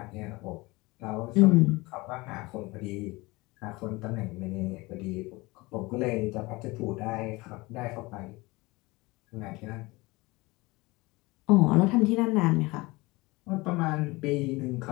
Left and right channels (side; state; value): right; quieter; 22.8 dB